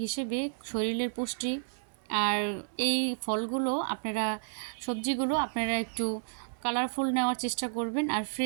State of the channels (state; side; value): silent; left; 55 dB below the other